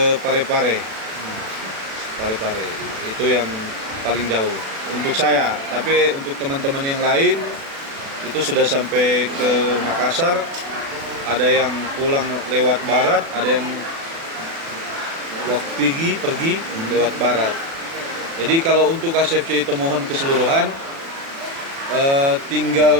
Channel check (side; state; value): left; late; 36 ms